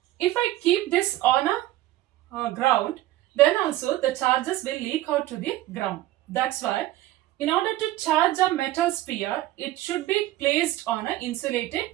If I keep this on a ground, then also the charges will leak out to the ground. That's why in order to charge a metal sphere, it should be placed on an insulated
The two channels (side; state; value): left; quieter; 15.7 dB